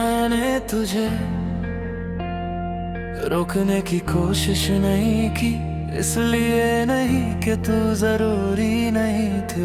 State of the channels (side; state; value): both; identical; correlation 1.00